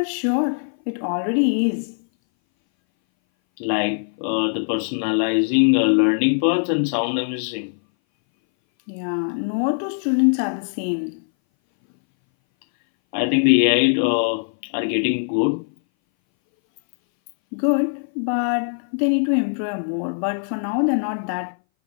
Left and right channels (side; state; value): right; silent; 61 dB below the other